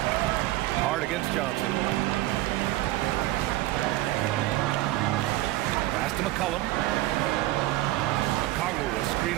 Hart against Johnson. Pass to McCollum. A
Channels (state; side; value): quieter; left; 16.9 dB